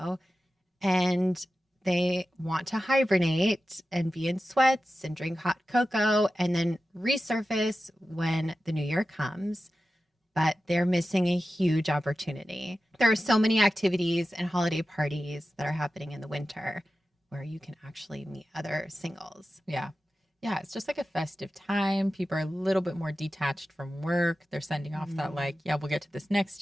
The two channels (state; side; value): normal; both; correlation 0.93